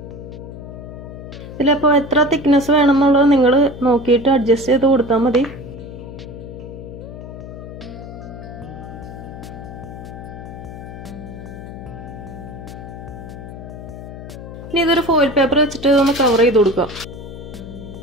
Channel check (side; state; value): left; noise; hum, 12 dB below the sound